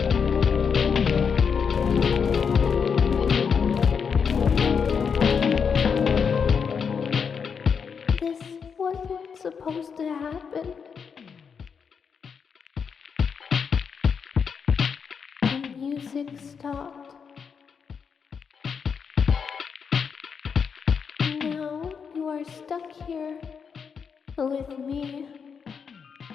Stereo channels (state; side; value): quieter; right; 6.3 dB